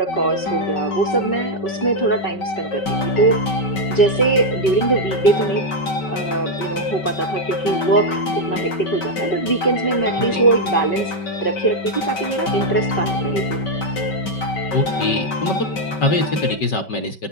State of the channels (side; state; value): right; late; 5.2 ms